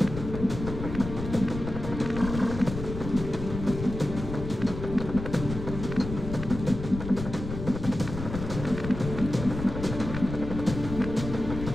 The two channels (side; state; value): left; noise; rumble, 7 dB below the sound